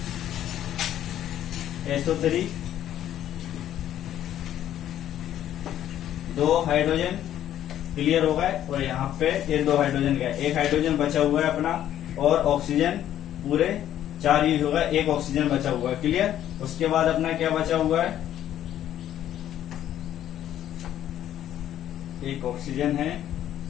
SO3, 2 हाइड्रोजन। क्लियर हो गए। और यहाँ पे ये 2 हाइड्रोजन गए, एक हाइड्रोजन बचा हुआ है अपना, और ऑक्सीजन पूरे 4 यूज होगा, एक ऑक्सीजन बचा हुआ है। क्लियर। उसके बाद अपना क्या बचा हुआ है, एक ऑक्सीजन है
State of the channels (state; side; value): quieter; right; 11.5 dB